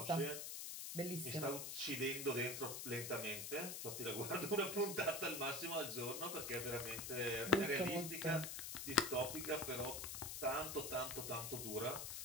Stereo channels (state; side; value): noise; left; hiss, 5 dB below the sound